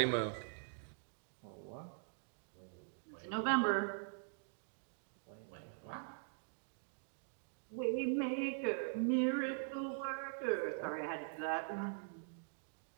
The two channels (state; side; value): silent; left; digital silence